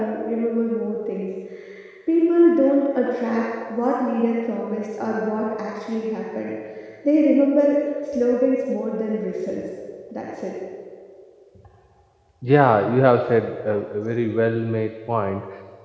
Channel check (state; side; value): identical; both; correlation 1.00